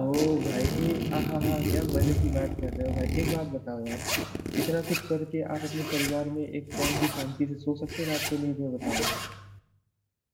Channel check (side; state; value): both; identical; correlation 1.00